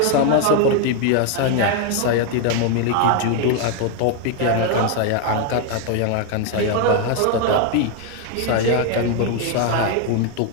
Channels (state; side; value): different; both; correlation 0.00